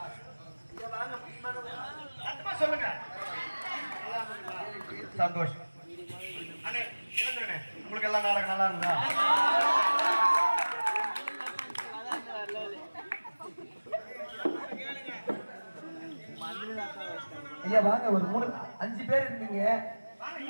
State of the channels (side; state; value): both; inverted; correlation -1.00